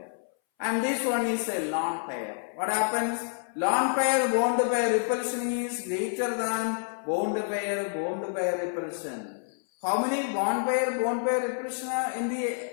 And this one is a lone pair. What happens? Lone pair bond pair repulsion is greater than bond pair repulsion. How many bond pair repulsion are in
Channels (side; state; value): right; silent; 59 dB below the other